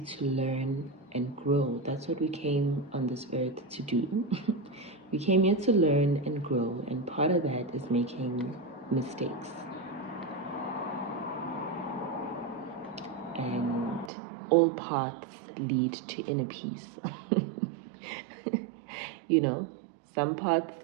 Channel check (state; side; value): drops out; left; at 14.1 s